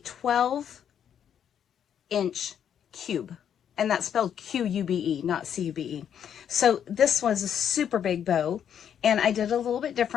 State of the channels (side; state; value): right; quieter; 8.9 dB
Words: 12-inch cube. And that's spelled Q-U-B-E, not C-U-B-E. So this was a super big bow, and I did a little bit